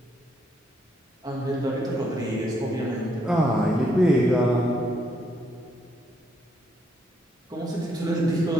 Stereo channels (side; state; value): both; normal; correlation 0.74